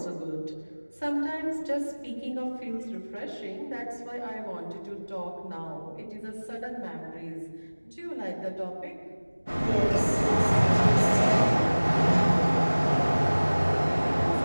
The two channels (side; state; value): both; inverted; correlation -1.00